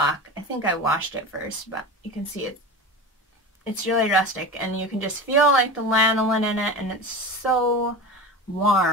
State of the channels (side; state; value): both; normal; correlation 0.29